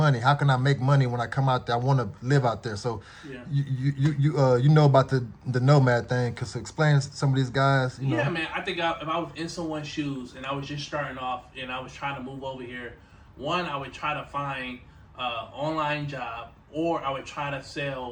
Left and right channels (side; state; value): both; identical; correlation 1.00